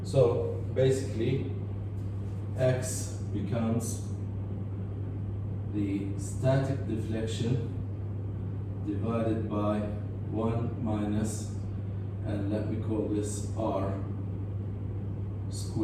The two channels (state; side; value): identical; both; correlation 1.00